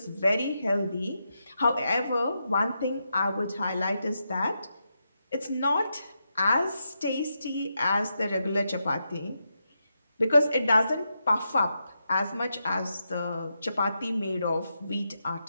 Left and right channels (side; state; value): both; inverted; correlation -0.85